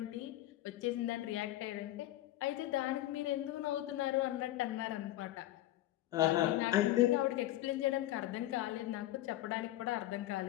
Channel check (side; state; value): right; quieter; 15.1 dB